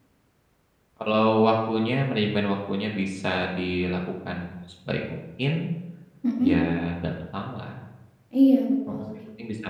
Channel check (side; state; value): both; identical; correlation 1.00